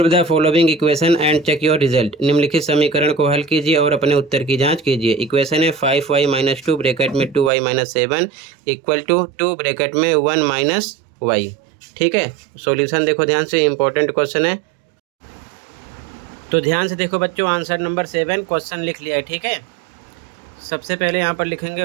the following equation and check your result. निम्नलिखित समीकरण को हल कीजिए और अपने उत्तर की जांच कीजिए। इक्वेशन है 5y - 2 ब्रैकेट में 2y - 7 इक्वल टू 2 ब्रैकेट में 1 - y। ठीक है, सॉल्यूशन देखो ध्यान से, इंपॉर्टेंट क्वेश्चन है, तो ध्यान से देखो बच्चों, आंसर नंबर 7 क्वेश्चन लिख लिया है, ठीक है। सबसे पहले यहाँ पर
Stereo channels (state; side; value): drops out; left; at 7.5 s